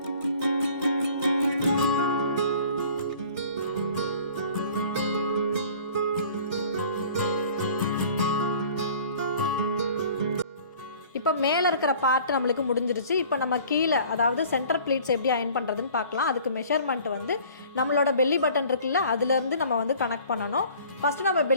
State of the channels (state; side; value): inverted; both; correlation -0.50